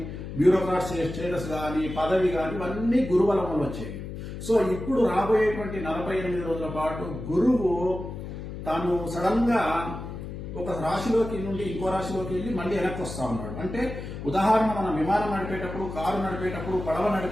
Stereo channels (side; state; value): left; noise; hum, 9 dB below the sound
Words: బ్యూరోక్రాట్ స్టేటస్ కానీ, పదవి కానీ, ఇవన్నీ గురుబలం వల్ల వచ్చేవి. సో ఇప్పుడు రాబోయేటువంటి 48 రోజుల పాటు గురువు తాను సడన్ గా ఒక రాశిలోకి నుండి ఇంకో రాశిలోకి వెళ్ళి మళ్ళీ వెనక్కి వస్తా ఉన్నాడు. అంటే ఉదాహరణ, మనం విమానం నడిపేటప్పుడు, కారు నడిపేటప్పుడు, పడవ